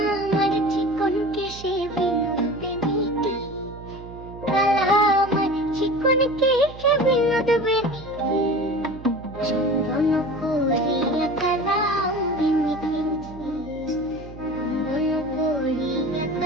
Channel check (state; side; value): noise; right; hum, 15 dB below the sound